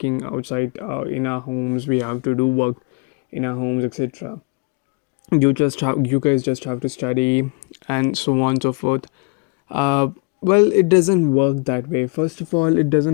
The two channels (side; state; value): right; quieter; 32.6 dB